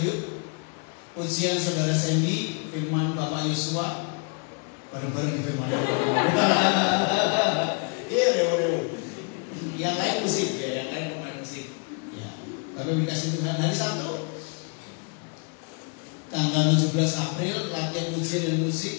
pujian Saudara Sandy, firman Bapak Yosua, bareng-bareng di firman Iya, yang lain musik ya, yang lain pemain musik. Ya, kami dikasih Tuhan. Hari Sabtu tanggal 17 April latihan pujian dan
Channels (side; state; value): right; quieter; 36.9 dB